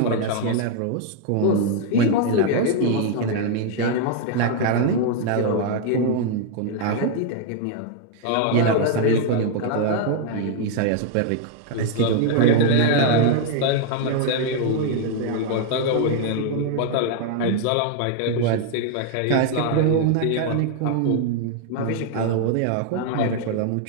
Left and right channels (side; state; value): both; different; correlation 0.00